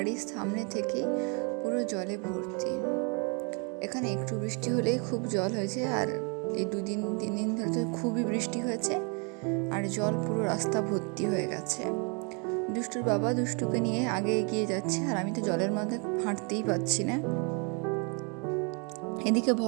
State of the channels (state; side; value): quieter; left; 34.7 dB